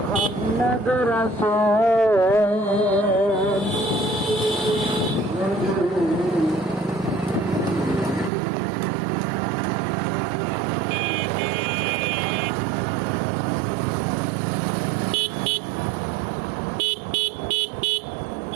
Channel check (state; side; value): drops out; left; at 8.3 s